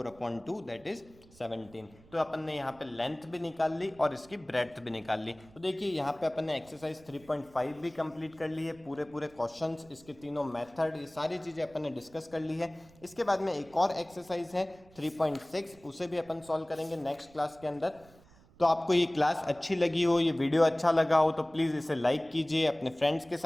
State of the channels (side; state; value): right; noise; rumble, 25 dB below the sound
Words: दैट इज 17। तो अपन ने यहाँ पे लेंथ भी निकाल ली और इसकी ब्रेड्थ भी निकाल ली। तो देखिए यहाँ पे अपन ने एक्सरसाइज 3.5 भी कंप्लीट कर ली है, पूरे क्वेश्चंस, इसके तीनों मेथड, ये सारी चीज़ें अपन ने डिस्कस कर ली है। इसके बाद में एक और एक्सरसाइज है 3.6, उसे भी अपन सॉल्व करेंगे नेक्स्ट क्लास के अंदर। तो आपको ये क्लास अच्छी लगी हो, ये वीडियो अच्छा लगा हो, तो प्लीज़ इसे लाइक कीजिए, अपने फ्रेंड्स के